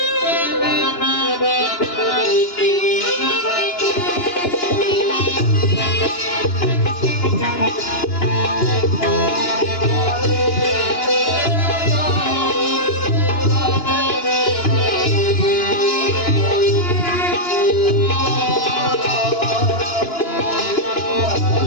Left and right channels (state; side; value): late; right; 2.9 ms